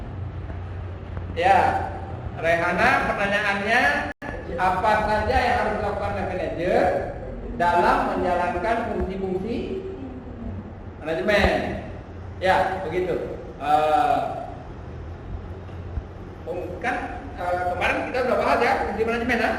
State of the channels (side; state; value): both; identical; correlation 1.00